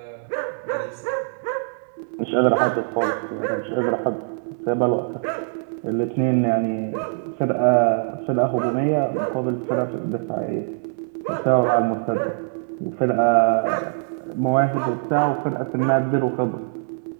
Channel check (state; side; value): silent; left; digital silence